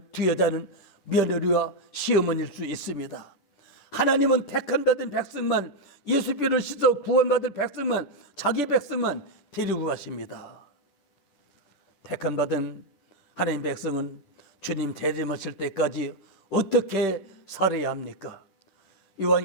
두 여자는 며느리와 시어머니일 수 있습니다. 하나님은 택한 받은 백성만, 예수님을 씻어 구원받을 백성만, 자기 백성만 데리고 가십니다. 택한 받은 하나님 백성은 주님 재림하실 때까지 어떻게 살아야 합니까?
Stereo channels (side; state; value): right; late; 10 ms